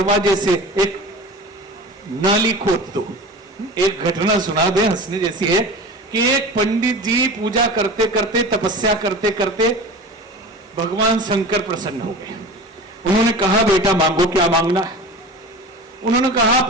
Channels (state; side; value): normal; both; correlation 0.34